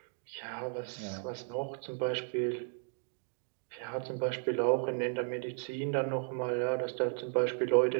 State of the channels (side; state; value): left; silent; 55 dB below the other